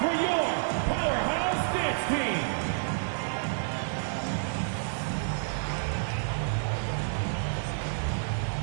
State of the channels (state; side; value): silent; left; digital silence